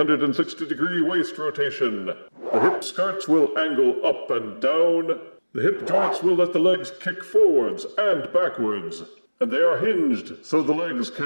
waist rotation. The hip skirts will angle up and down. The hip joints will let the legs kick forwards and backwards. And they are hinged so the legs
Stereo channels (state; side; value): inverted; both; correlation -1.00